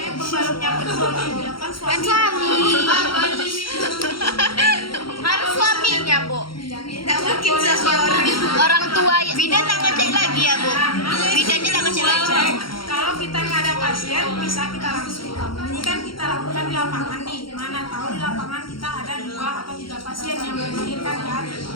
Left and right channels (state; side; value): late; right; 0.73 ms